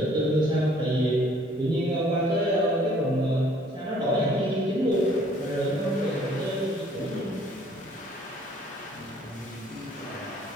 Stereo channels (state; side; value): normal; both; correlation 0.59